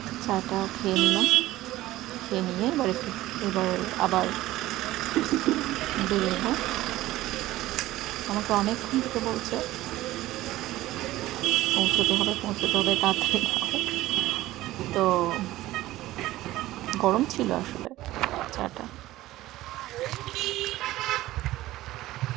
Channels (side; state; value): left; quieter; 16.3 dB